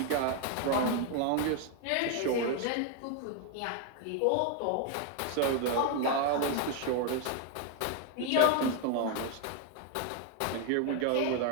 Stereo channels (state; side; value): different; both; correlation 0.01